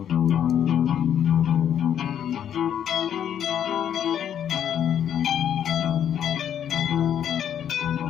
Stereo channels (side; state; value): right; quieter; 9.5 dB